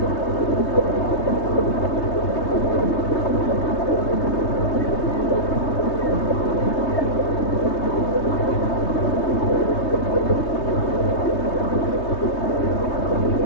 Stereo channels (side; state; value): right; late; 3.2 ms